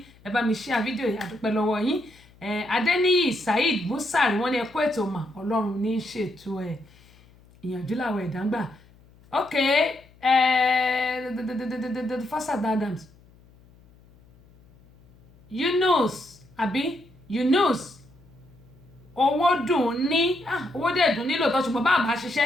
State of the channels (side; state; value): left; noise; hum, 27 dB below the sound